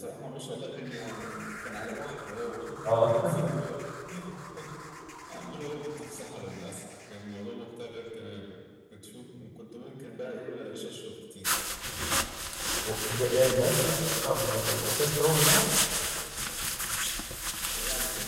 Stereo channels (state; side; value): identical; both; correlation 1.00